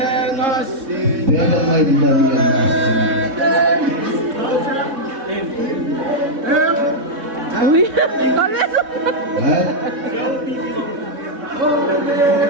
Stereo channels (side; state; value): left; late; 3.7 ms